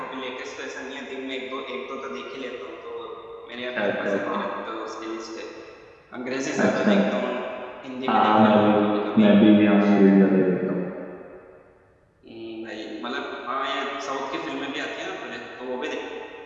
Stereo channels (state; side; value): identical; both; correlation 1.00